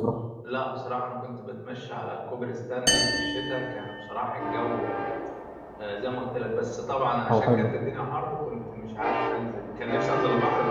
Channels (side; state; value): both; identical; correlation 1.00